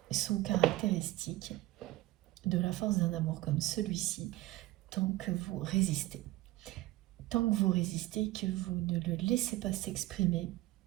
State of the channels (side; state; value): left; quieter; 17.2 dB